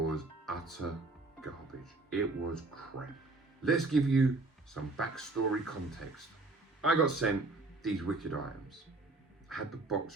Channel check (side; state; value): left; quieter; 3.2 dB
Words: utter garbage. It was crap. Let's give you some backstory context. I got sent these wicked items. I had the